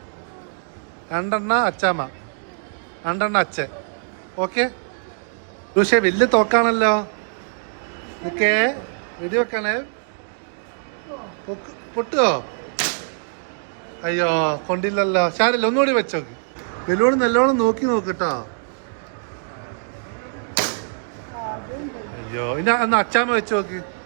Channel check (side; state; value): left; silent; digital silence